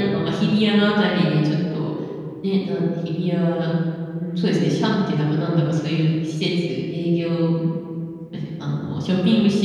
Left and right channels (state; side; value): identical; both; correlation 1.00